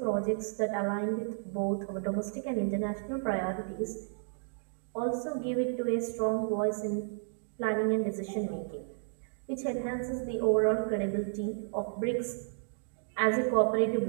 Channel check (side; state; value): left; silent; digital silence